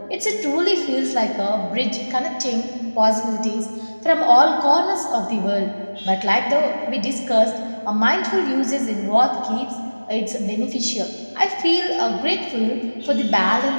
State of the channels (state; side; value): inverted; both; correlation -1.00